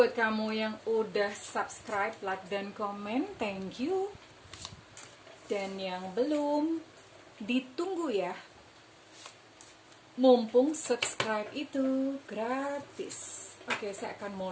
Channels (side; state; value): both; identical; correlation 1.00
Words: kamu yang udah subscribe, like, dan komen. Thank you. Dan yang belum, ditunggu ya. Mumpung subscribe itu gratis. Oke, saya akan